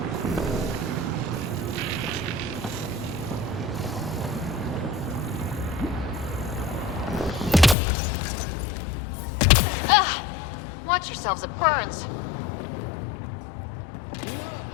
Watch yourselves, it burns.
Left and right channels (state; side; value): drops out; right; at 7.8 s